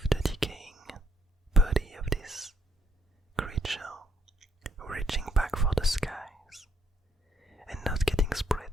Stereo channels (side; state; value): both; normal; correlation 0.72